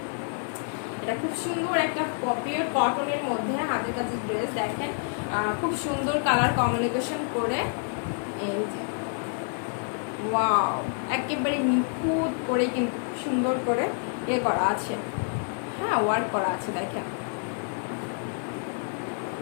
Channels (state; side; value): silent; right; 56 dB below the other